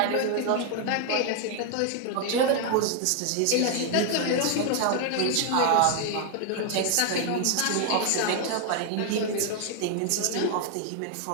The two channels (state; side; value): different; both; correlation 0.00